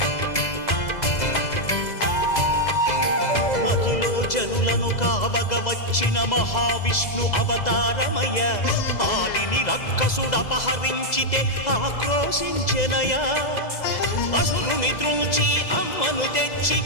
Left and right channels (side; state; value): right; late; 2.0 ms